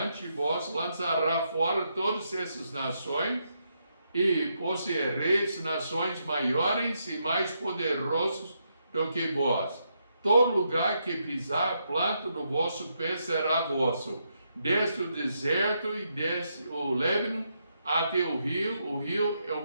de vós lançará fora todas essas nações, e possuireis nações maiores e mais poderosos do que vós. Todo lugar que pisar a planta do vosso pé será vosso, desde o deserto e desde o Líbano até o rio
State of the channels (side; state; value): both; inverted; correlation -0.80